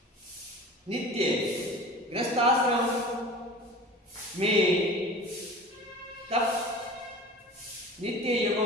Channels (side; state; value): both; normal; correlation 0.38